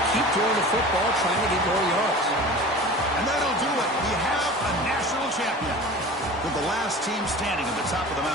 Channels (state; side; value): normal; both; correlation 0.37